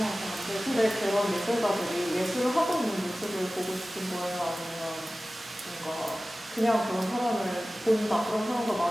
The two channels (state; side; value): normal; both; correlation 0.96